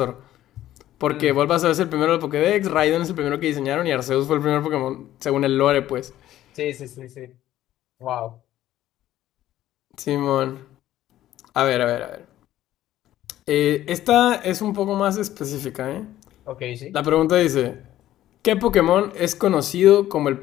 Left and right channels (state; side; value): quieter; right; 13.4 dB